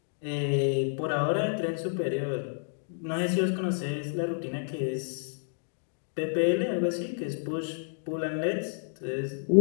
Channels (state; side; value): silent; right; digital silence